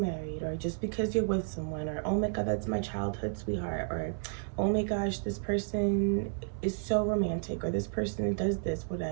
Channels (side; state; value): left; silent; 56 dB below the other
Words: or just because you're with someone, or oh my god, that's my childhood sweetheart, or oh my gosh, this person is so romantic, or this person does this,